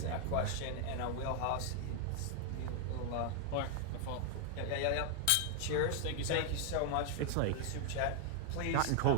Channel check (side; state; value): both; different; correlation 0.00